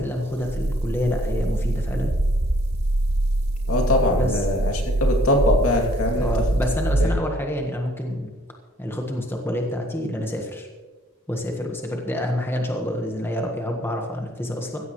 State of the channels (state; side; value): normal; both; correlation 0.62